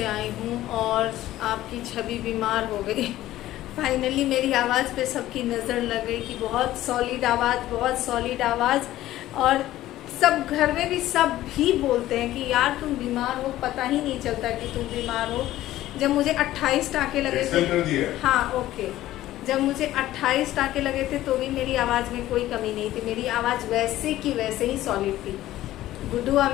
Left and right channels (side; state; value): right; quieter; 14.7 dB